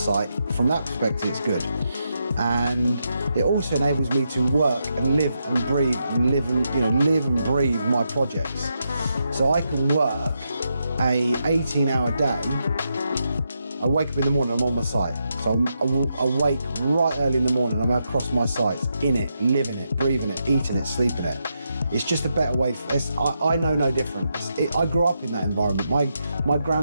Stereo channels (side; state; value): both; inverted; correlation -0.83